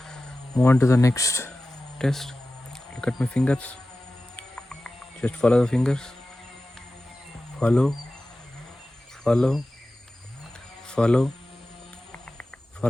move on to the next test? Look at my fingers. Just follow the fingers. Follow. Follow. Follow.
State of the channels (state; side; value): normal; both; correlation 0.95